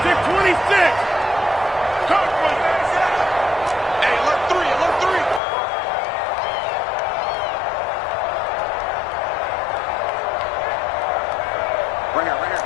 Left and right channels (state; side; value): drops out; right; at 5.4 s